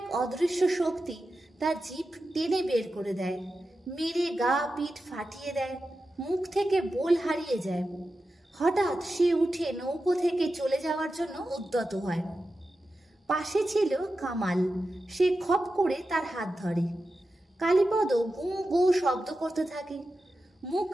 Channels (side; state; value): both; normal; correlation 0.91